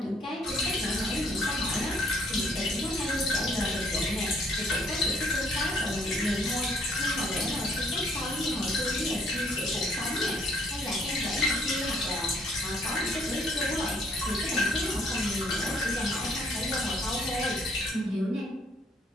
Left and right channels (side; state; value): both; normal; correlation 0.64